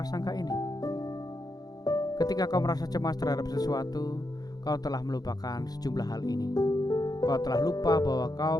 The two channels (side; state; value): right; late; 0.19 ms